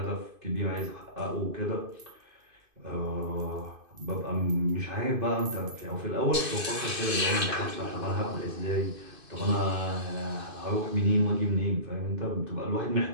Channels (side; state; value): left; late; 2.5 ms